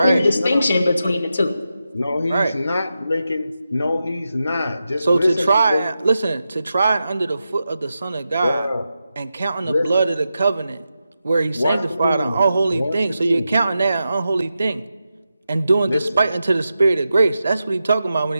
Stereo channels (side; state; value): both; inverted; correlation -0.90